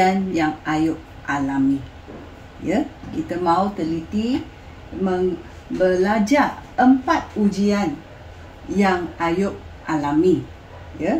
yang Ayub alami. Ya, kita mau teliti belajar 4 ujian yang Ayub alami.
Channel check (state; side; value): identical; both; correlation 1.00